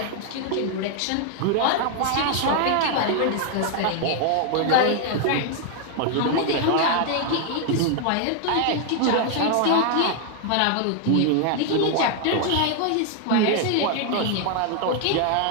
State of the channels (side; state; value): both; different; correlation 0.00